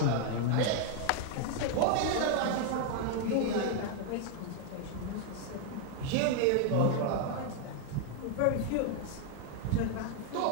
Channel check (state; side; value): different; both; correlation 0.00